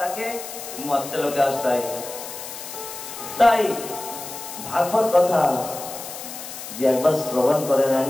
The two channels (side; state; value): left; noise; hiss, 10 dB below the sound